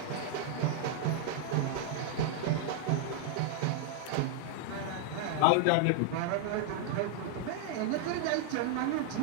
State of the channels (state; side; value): different; both; correlation 0.00